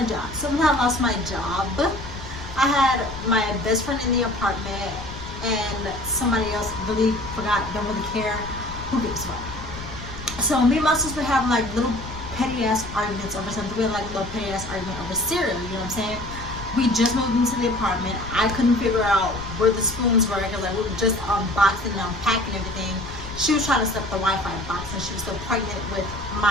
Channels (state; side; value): noise; left; rumble, 12 dB below the sound